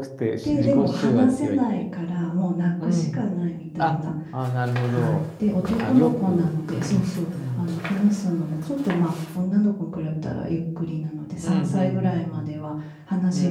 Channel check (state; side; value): identical; both; correlation 1.00